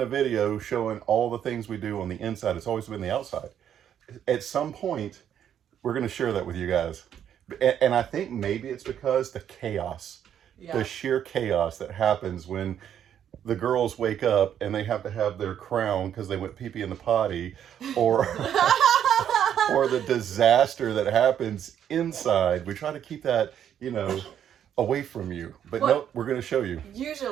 video showing all the things we do on the inside. It's always been the outside. At some point, we're going to share that with you guys. And I think maybe it's because the chaos, the sheer chaos that happens when the girls wake up and they have to have their crown because they went pee-pee in the potty, or or the disaster that happens inside. We try to keep that, away from you. But no, we're going to show you.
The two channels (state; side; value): quieter; left; 9.6 dB